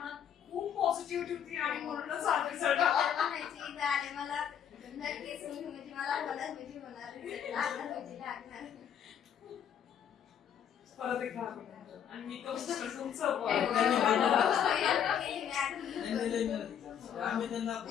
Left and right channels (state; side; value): quieter; right; 8.9 dB